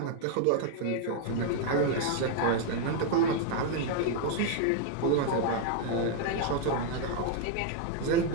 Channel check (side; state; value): both; different; correlation 0.00